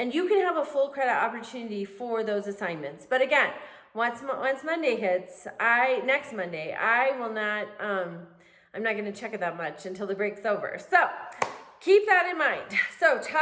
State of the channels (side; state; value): both; identical; correlation 1.00